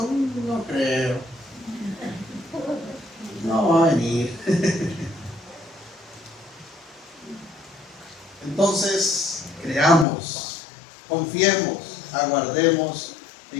no creo, no va a venir. Entonces, creamos, confiemos, aguardemos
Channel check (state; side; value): drops out; right; at 10.1 s